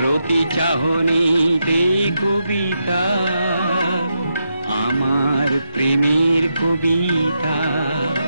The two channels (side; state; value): both; inverted; correlation -0.84